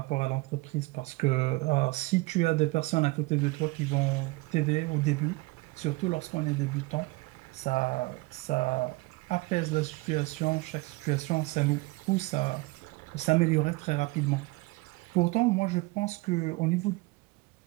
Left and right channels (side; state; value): left; quieter; 23.2 dB